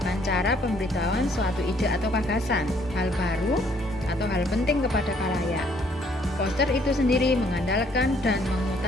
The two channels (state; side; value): normal; both; correlation 0.64